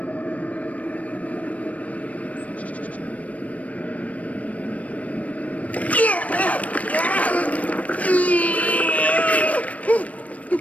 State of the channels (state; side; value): late; right; 0.068 ms